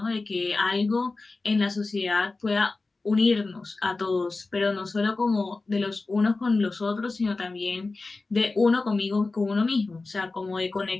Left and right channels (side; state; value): right; quieter; 3.6 dB